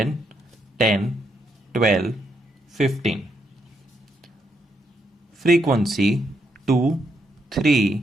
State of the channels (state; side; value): normal; both; correlation 0.78